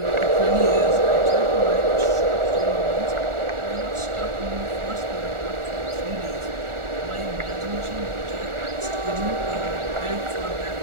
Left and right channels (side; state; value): left; late; 1.4 ms